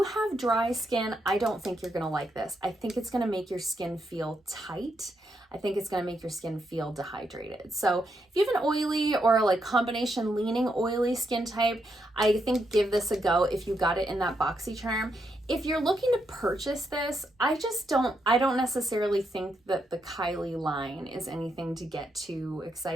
have dry skin, I don't think you're gonna like this. I think it's gonna make your skin feel tight. I think it's gonna make your skin feel dehydrated. So if you have an oily or combination leaning oily skin type, I think give this a go if you got it in that BoxyCharm. If you're looking to purchase this, I don't necessarily think that the Kylie line is anything to get too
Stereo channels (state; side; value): normal; both; correlation 0.80